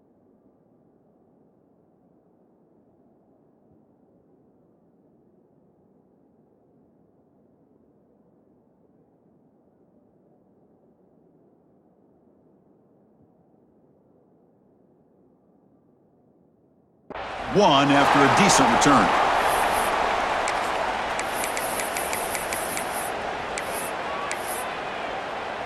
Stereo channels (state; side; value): identical; both; correlation 1.00